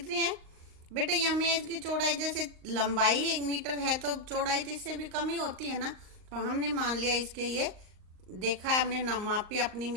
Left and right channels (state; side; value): late; left; 38 ms